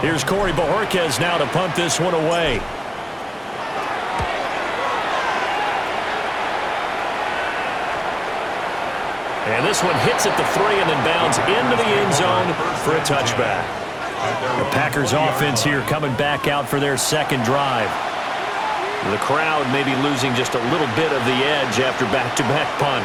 Here's Corey Bojorquez now to punt this one away. And this one hits at the 3 and then bounds into the end zone for a touchback. The Packers offense here coming back out for their 2nd drive. The crowd may be losing just a little bit of the edge after back-to-back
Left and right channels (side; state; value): both; identical; correlation 1.00